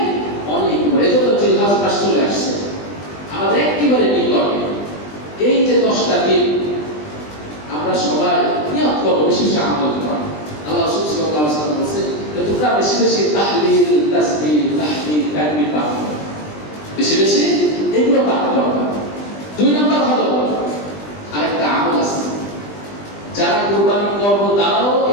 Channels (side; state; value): right; late; 20 ms